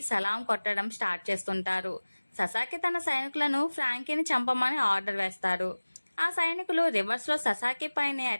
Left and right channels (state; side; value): inverted; both; correlation -1.00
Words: సలాం కొట్టడం స్టార్ట్ చేస్తుంటారు. ససాకి తన సైనికులను ఫ్రాంకీని చంపమని ఆర్డర్ వేస్తారు. ఆ సైనికులు రివర్స్ లో ససాకి పైనే